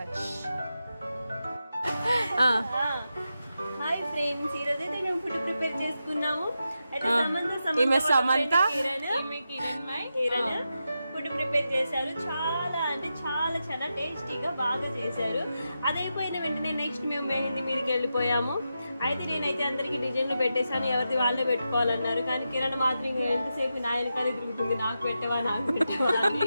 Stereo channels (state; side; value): inverted; both; correlation -0.89